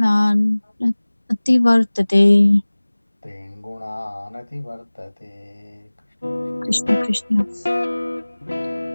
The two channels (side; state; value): both; inverted; correlation -1.00